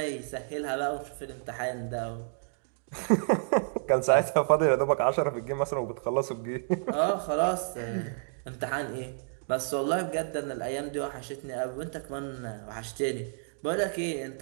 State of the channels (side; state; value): left; silent; digital silence